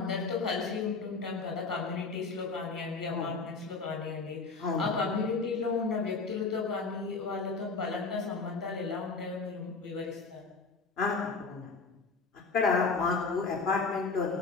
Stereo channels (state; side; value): quieter; right; 4.3 dB